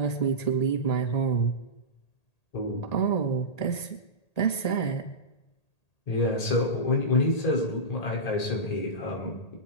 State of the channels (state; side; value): late; right; 1.8 ms